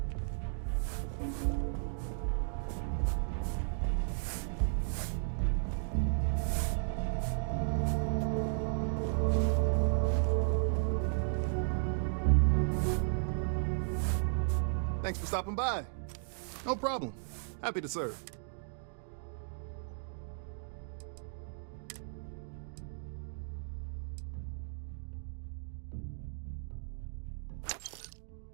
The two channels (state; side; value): silent; left; digital silence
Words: Thanks for stopping by. No problem. Happy to serve.